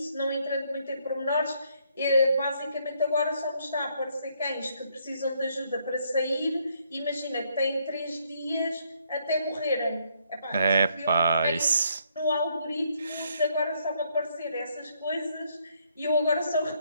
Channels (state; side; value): inverted; both; correlation -0.71